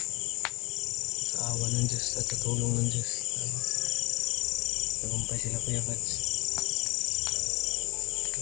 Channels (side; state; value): right; quieter; 23.7 dB